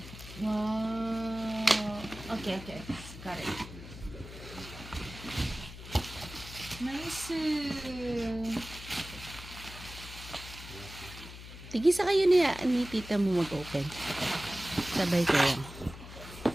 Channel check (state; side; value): noise; left; hum, 13 dB below the sound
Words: Wow. Okay. Got it. Nice. Tigisa kayo ni tita mo mag-open. Sabay kayo.